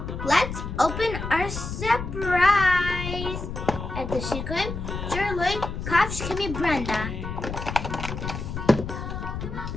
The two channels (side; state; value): left; noise; rumble, 6 dB below the sound